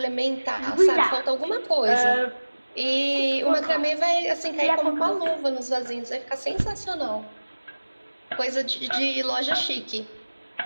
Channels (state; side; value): inverted; both; correlation -1.00